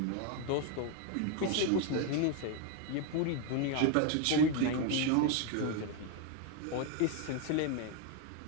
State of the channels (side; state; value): both; different; correlation 0.01